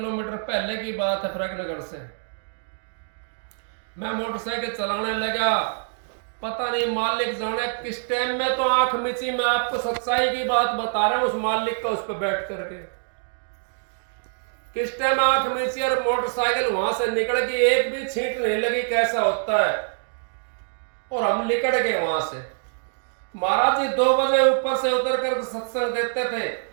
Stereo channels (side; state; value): left; silent; digital silence